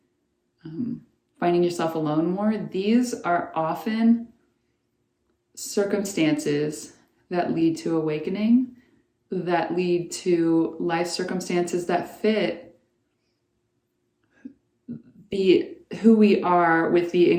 finding yourself alone more, these are often circumstances that lead to awakening, that lead to life circumstances that fit who we are with the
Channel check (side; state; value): both; identical; correlation 1.00